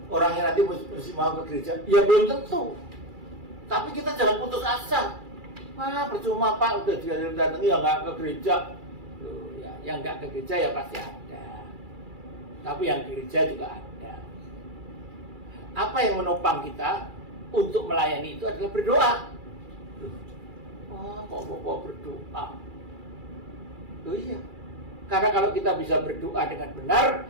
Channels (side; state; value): left; late; 2.3 ms